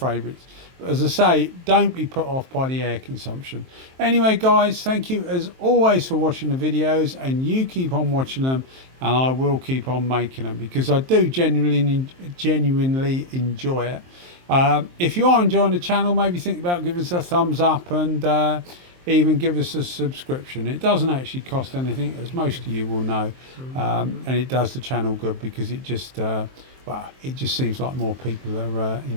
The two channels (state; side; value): late; left; 23 ms